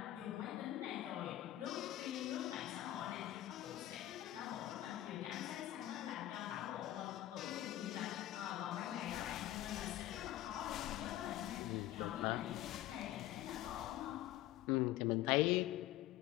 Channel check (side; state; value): right; quieter; 14.2 dB